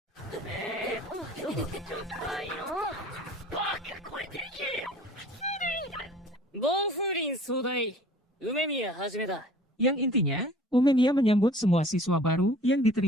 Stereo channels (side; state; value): both; normal; correlation 0.48